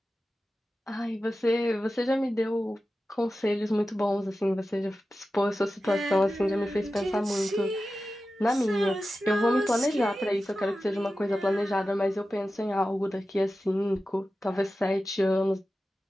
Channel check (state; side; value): normal; both; correlation 0.94